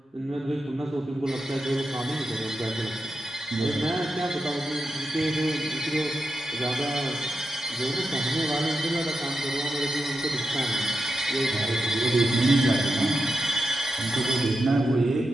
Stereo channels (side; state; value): both; normal; correlation 0.88